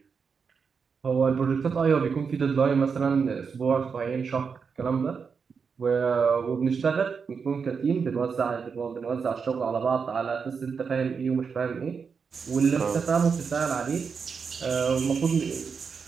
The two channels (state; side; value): quieter; left; 5.8 dB